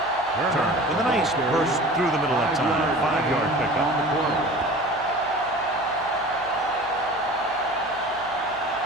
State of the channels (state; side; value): noise; right; hum, 24 dB below the sound